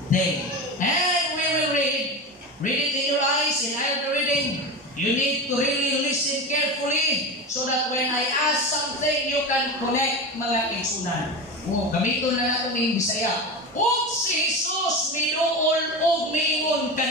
day. And we will read it in your eyes, in our reading. You need to really listen carefully so that when I ask something, you can connect mga kaigsunan. Gamiton na natin ng Bisaya. Og si Jesus minuol og miingon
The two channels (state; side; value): normal; both; correlation 0.24